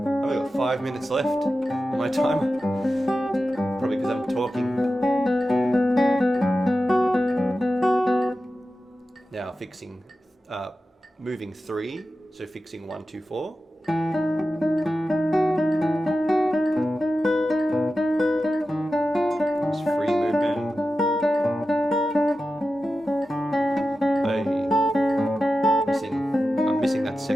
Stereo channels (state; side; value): normal; both; correlation 0.92